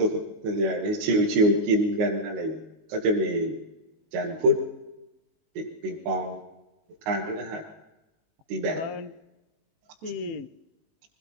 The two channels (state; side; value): late; left; 19 ms